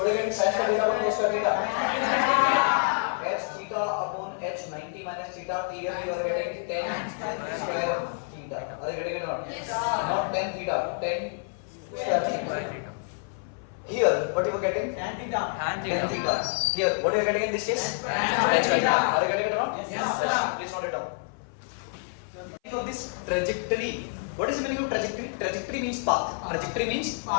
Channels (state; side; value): silent; right; 57 dB below the other